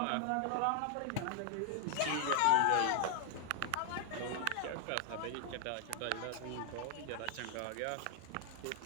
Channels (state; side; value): different; both; correlation 0.00